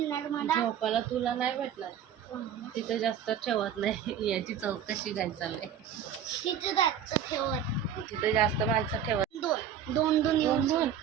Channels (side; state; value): left; quieter; 8.7 dB